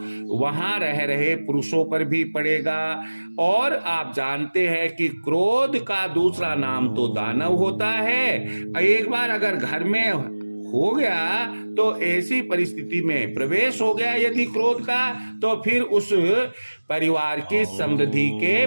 वहां रह रहे पुरुषों पर भी पड़ेगा। और आप जानते हैं कि क्रोध का दूसरा नाम तो दानव होता है। एक बार अगर घर में हो गया तो ऐसी परिस्थिति में प्रवेश हो गया यदि क्रोध का, तो फिर उस परिवार की समृद्धि के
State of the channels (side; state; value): both; inverted; correlation -1.00